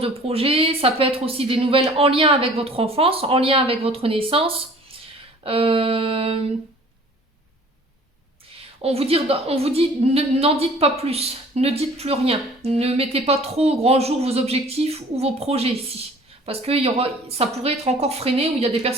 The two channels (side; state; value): both; normal; correlation 0.50